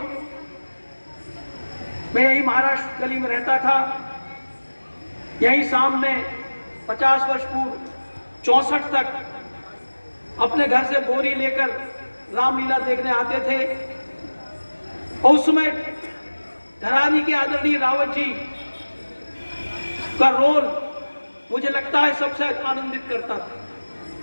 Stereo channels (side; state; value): both; inverted; correlation -1.00